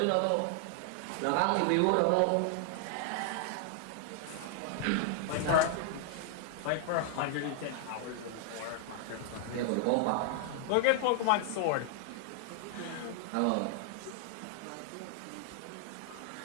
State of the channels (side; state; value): both; different; correlation 0.00